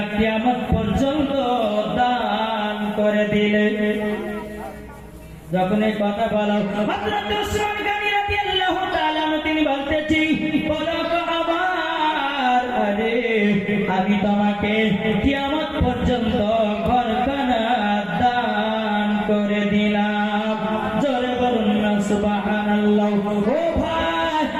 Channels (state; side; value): identical; both; correlation 1.00